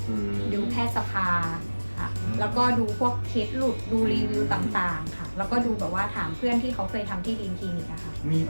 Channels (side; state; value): both; inverted; correlation -1.00